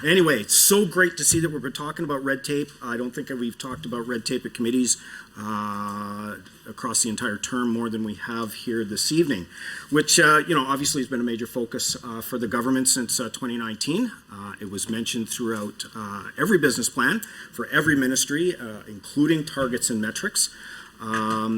Anyway, it's so great to see that we've been talking about red tape. I don't think we've talked about red tape at committees across the entire term more than we have here this evening, which, obviously has been a major focus for the government since 2019. It was mentioned throughout every business plan for every ministry, including targets and metrics.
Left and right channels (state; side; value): identical; both; correlation 1.00